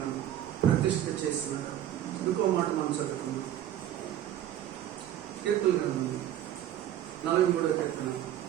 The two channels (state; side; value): quieter; left; 11.6 dB